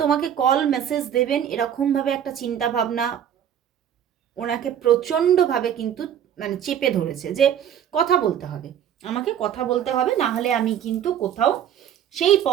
তোমাকে কল মেসেজ দেবেন এরকমভাবে একটা চিন্তা ভাবনা ওনাকে প্রচণ্ডভাবে কিন্তু মানে চেপে ধরেছে, যে কথা বলতে হবে, আমাকে কথা বলতে হবে, না হলে আমি কিন্তু কোথাও সেই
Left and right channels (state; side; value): quieter; left; 9.6 dB